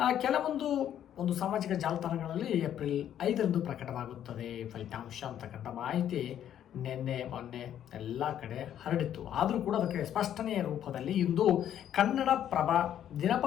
ಕೆಲವೊಂದು ಸಾಮಾಜಿಕ ಜಾಲತಾಣಗಳಲ್ಲಿ ಏಪ್ರಿಲ್ 5ರಂದು ಪ್ರಕಟವಾಗುತ್ತದೆ ಫಲಿತಾಂಶ ಅಂತಕ್ಕಂಥ ಮಾಹಿತಿ ನಿನ್ನೆ ಮೊನ್ನೆ ಎಲ್ಲ ಕಡೆ ಹರಡಿತ್ತು. ಆದರೂ ಕೂಡ ಅದಕ್ಕೆ ಸ್ಪಷ್ಟನೆಯ ರೂಪದಲ್ಲಿ ಇಂದು ಕನ್ನಡಪ್ರಭ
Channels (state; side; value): quieter; right; 10.4 dB